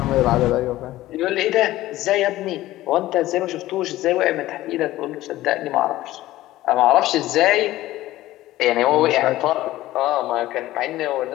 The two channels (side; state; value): right; quieter; 15.9 dB